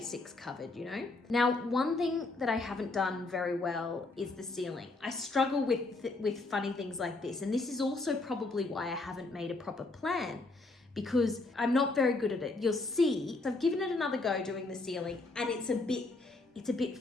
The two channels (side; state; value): right; quieter; 3.2 dB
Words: covered, you know? Now, one thing that I haven't done very well is the ceiling. I struggle with funny things like this, and this is also probably why I haven't made a proper plan, because I'm not very good at it. You'll see, so I've given it another go doing the ceiling, and it's a bit